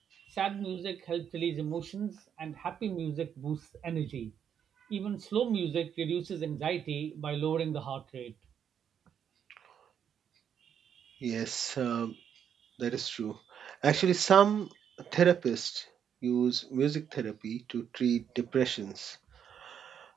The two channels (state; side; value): quieter; left; 8.4 dB